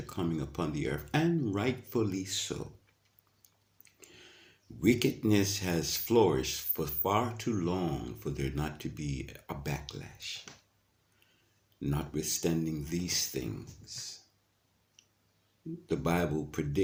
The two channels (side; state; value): both; identical; correlation 1.00